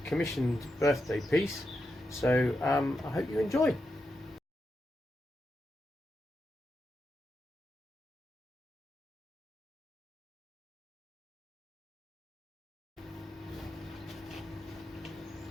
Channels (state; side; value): normal; both; correlation 0.86